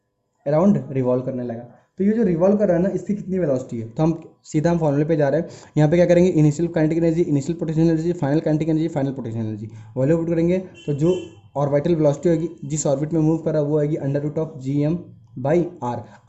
अराउंड रिवॉल्व करने लगा। तो ये जो रिवॉल्व कर रहा है ना, इसकी कितनी वेलोसिटी है, तो हम सीधा हम फॉर्मूले पे जा रहे हैं। यहाँ पे क्या करेंगे, initial kinetic energy, initial potential energy, final kinetic energy, final potential energy value put करेंगे। तो जो ऑर्बिटल वेलोसिटी होगी जिस ऑर्बिट में मूव कर रहा है वो आएगी under root of G M by R.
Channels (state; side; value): identical; both; correlation 1.00